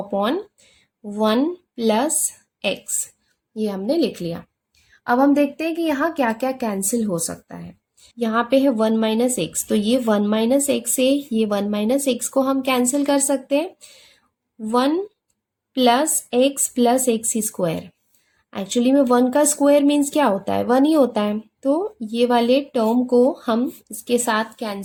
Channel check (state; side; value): identical; both; correlation 1.00